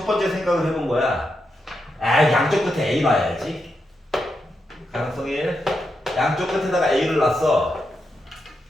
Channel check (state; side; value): normal; both; correlation 0.84